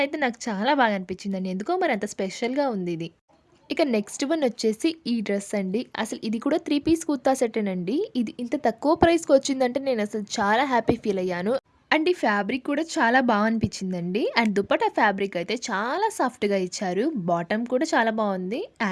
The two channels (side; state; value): both; identical; correlation 1.00